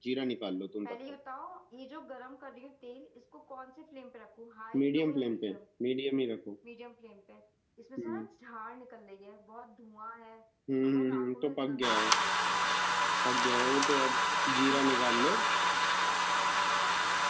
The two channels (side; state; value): both; identical; correlation 1.00